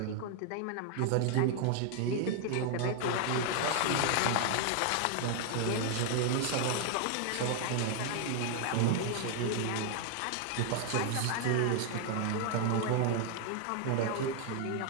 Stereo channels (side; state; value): both; different; correlation 0.00